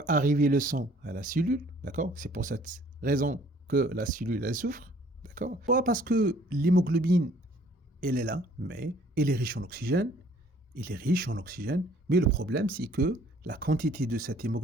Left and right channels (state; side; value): normal; both; correlation 0.58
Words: arriver le sang à la cellule, d'accord? C'est pour cette raison que la cellule, elle souffre, d'accord? Pas parce que l'hémoglobine, elle est là, mais elle est riche en oxygène, mais le problème, c'est que la quantité de cette